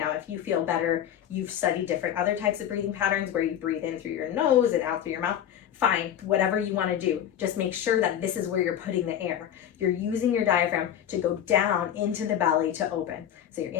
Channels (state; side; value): quieter; right; 10.1 dB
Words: if you feel better, you've studied different other types of breathing patterns where you breathe in through your nose and out through your mouth, fine, whatever you want to do. Just make sure that this is where you're putting the air. You're using your diaphragm to go down into the belly to open. So you're